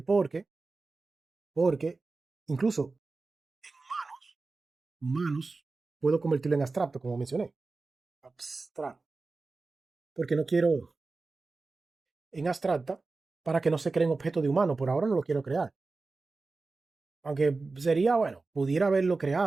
porque incluso humanos puedo convertirlo en abstracto, como mencioné. Abstracto. Porque no quiero en abstracta para que no se creen objetos de humano. Por ahora no lo quiero crear. Aunque sería, bueno, pudiera haberlo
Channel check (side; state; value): left; quieter; 3.8 dB